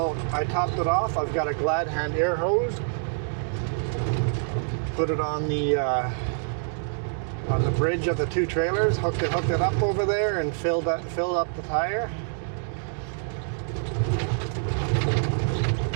I topped it off. I've got a Glad Hand air hose. Put it on the bridge of the 2 trailers, hooked it up over there and filled up the tire.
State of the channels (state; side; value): silent; left; digital silence